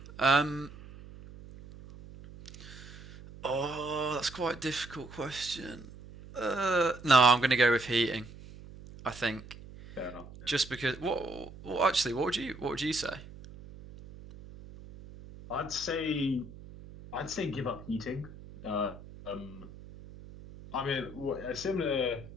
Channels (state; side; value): noise; right; hum, 16 dB below the sound